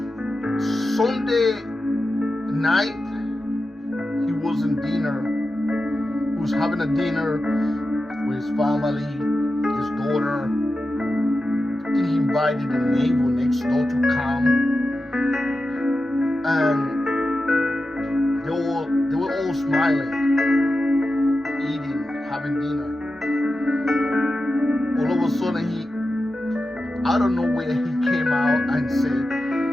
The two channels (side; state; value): both; normal; correlation 0.91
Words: Sunday night he was in dinner. He was having a dinner with his family, his daughter. I think he invited the neighbor next door to come. And they were all smiling, eating, having dinner. All of a sudden I don't know where he came out and said,